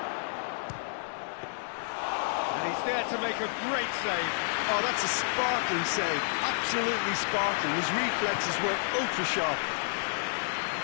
And he's there to make a great save. Oh, that's a sparkling save. Absolutely sparkling. His reflexes were ultra-sharp.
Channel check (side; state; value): right; silent; digital silence